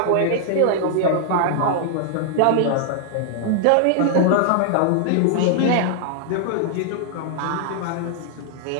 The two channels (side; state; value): both; different; correlation -0.01